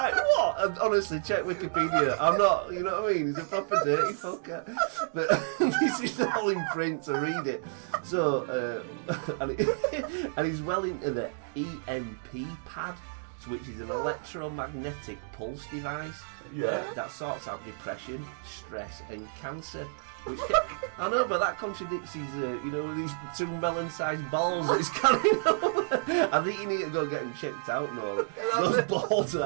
what? And honestly, check Wikipedia. I'm not, you know what I mean? He's a proper dirty fucker. But this is all in print, so read it. So, and he's well into the EMP pad, which is an electromagnetic pulse device that sorts out depression, stress, and cancer. I know, but that contradicts his, these 2 melon-sized balls that he's carrying over. I think you need to go get them checked out, Noel. Those balls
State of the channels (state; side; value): silent; left; digital silence